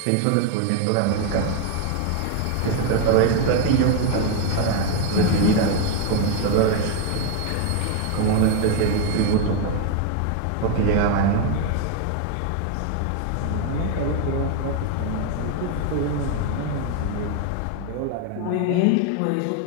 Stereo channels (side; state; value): both; different; correlation 0.01